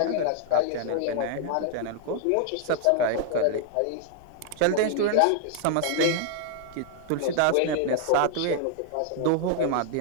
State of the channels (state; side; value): different; both; correlation -0.01